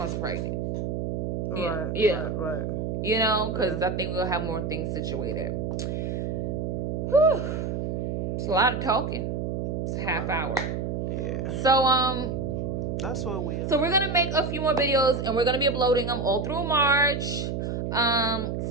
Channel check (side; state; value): right; noise; hum, 2 dB below the sound